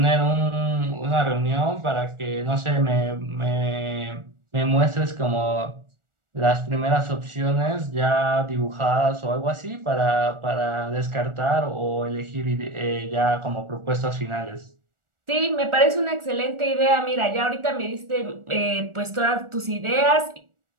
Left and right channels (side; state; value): left; late; 1.4 ms